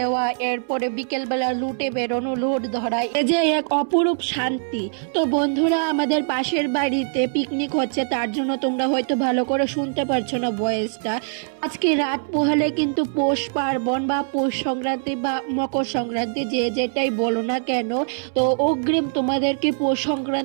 এরপরে বিকেলবেলা লুটে বেরোনো, লুট ধরা, এই যে এক অপরূপ শান্তি। তো বন্ধুরা, আমাদের পাশের বাড়িতে পিকনিক হচ্ছে, তার জন্য তোমরা হয়তো ভালো করে শুনতে পারছো না ভয়েসটা। আজকে রাত পোহালে কিন্তু পৌষ পার্বণ বা পৌষ সংক্রান্তি বা মকর সংক্রান্তি, যে যেটাই বলো না কেন, তো অগ্রিম তোমাদেরকে পৌষ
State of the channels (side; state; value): left; silent; 63 dB below the other